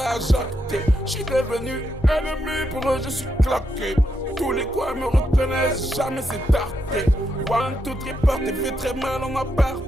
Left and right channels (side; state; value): both; normal; correlation 0.81